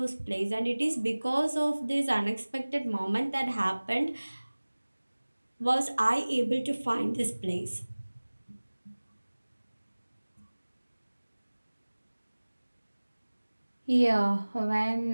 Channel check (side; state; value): both; inverted; correlation -1.00